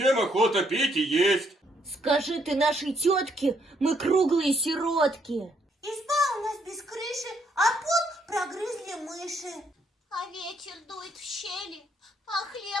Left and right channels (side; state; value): both; normal; correlation 0.71